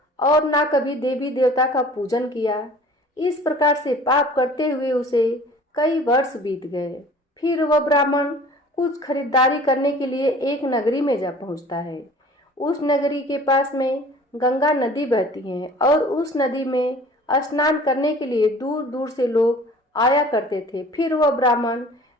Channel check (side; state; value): both; normal; correlation 0.47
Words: और ना कभी देवी देवता का पूजन किया। इस प्रकार से पाप करते हुए उसे कई वर्ष बीत गए। फिर वह ब्राह्मण कुछ खरीदारी करने के लिए एक नगरी में जा पहुंचता है। उस नगरी के पास में गंगा नदी बहती है और उस नदी में स्नान करने के लिए दूर दूर से लोग आया करते थे। फिर वह ब्राह्मण